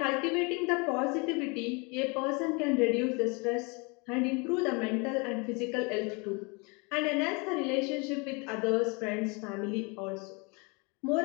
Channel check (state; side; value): quieter; right; 30.1 dB